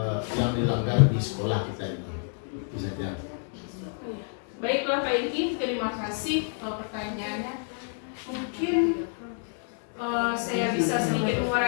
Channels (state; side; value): silent; right; 58 dB below the other